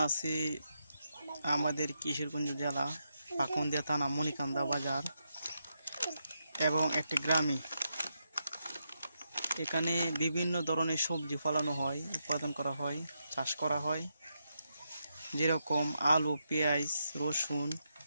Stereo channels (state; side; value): inverted; both; correlation -0.83